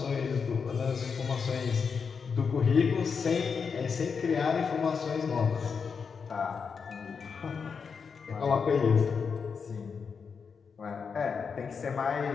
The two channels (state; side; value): quieter; right; 5.8 dB